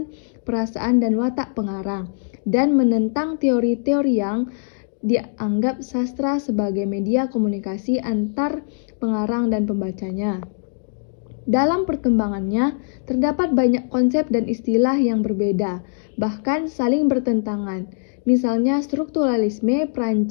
perasaan dan watak pengarang, dan menentang teori-teori yang dianggap sastra sebagai media komunikasi antar pengarang dan pembacanya. Dalam perkembangannya, terdapat banyak konsep dan istilah yang berbeda, bahkan saling bertentangan. Misalnya strukturalisme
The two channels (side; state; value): right; silent; digital silence